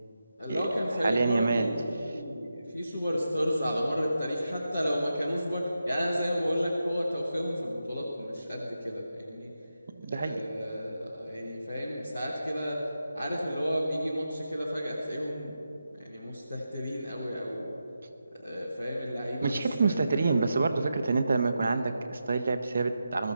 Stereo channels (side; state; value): both; inverted; correlation -0.89